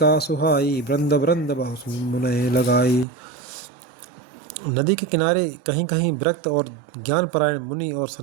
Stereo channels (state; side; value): drops out; left; at 3.1 s